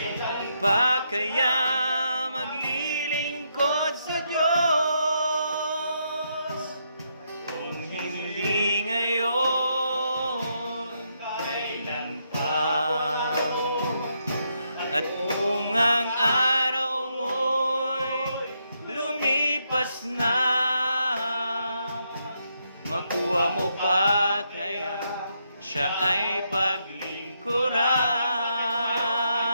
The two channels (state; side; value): inverted; both; correlation -0.79